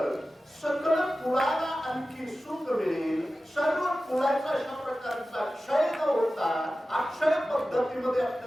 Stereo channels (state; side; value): normal; both; correlation 0.95